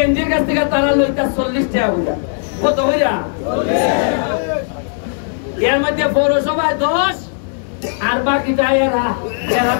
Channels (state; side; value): silent; right; digital silence